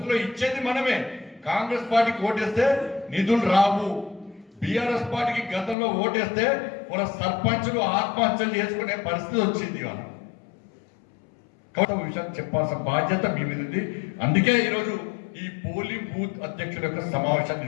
ఇచ్చేది మనమే. కాంగ్రెస్ పార్టీకి ఓటేస్తే నిధులు రావు. బీఆర్ఎస్ పార్టీకి గతంలో ఓటేస్తే మన సర్పంచులు ఆత్మహత్యలు చేసుకునే పరిస్థితి వచ్చింది. ఇవాళ కాబట్టి విషయం చెప్పాల్సిన బాధ్యత మీ మీద ఉంది. అందుకే ఈరోజు ఈ పోలింగ్ బూత్ అధ్యక్షుల యొక్క సమావేశాన్ని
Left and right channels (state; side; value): drops out; right; at 5.8 s